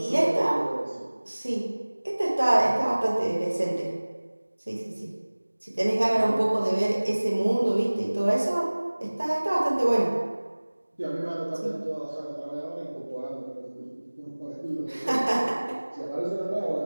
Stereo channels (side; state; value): both; inverted; correlation -1.00